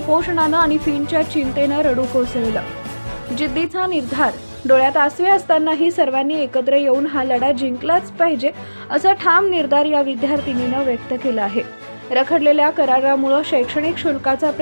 आणि फींच्या चिंतेनं रडू कोसळलं। जिद्दीचा निर्धार, डोळ्यात आसवे असतानाही सर्वांनी एकत्र येऊन हा लढा जिंकलाच पाहिजे असा ठाम निर्धार या विद्यार्थिनीनं व्यक्त केला आहे। रखडलेल्या करारामुळे शैक्षणिक शुल्काचा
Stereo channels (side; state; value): both; inverted; correlation -1.00